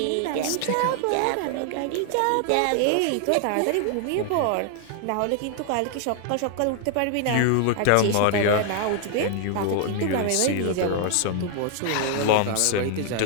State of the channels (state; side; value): different; both; correlation 0.00